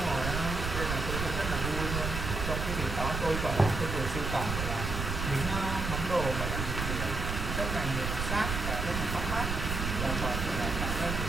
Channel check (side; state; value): right; noise; rumble, 3 dB below the sound